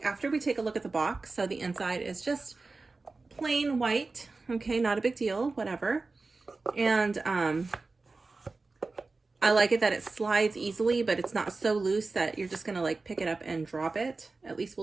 after we take a look at the box. So the inside is just plain white. Okay, not a big deal, whatever. And I like it that it slides easily, but it's not so loose that you're just gonna like pick it up and drop it. At least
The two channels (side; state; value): left; quieter; 3.7 dB